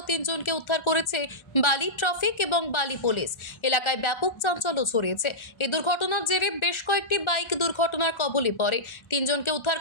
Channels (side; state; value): right; late; 1.4 ms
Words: 3 জনকে উদ্ধার করেছে বালি ট্রাফিক এবং বালি পুলিশ। এলাকায় ব্যাপক চাঞ্চল্য ছড়িয়েছে। এই দুর্ঘটনার জেরে বেশ কয়েকটি বাইক দুর্ঘটনার কবলে পড়ে। 3 জনকে উদ্ধার